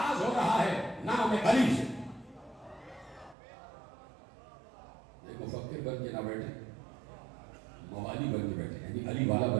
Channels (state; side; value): drops out; left; at 3.4 s